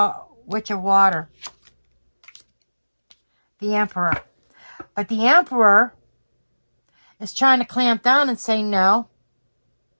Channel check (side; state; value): both; inverted; correlation -1.00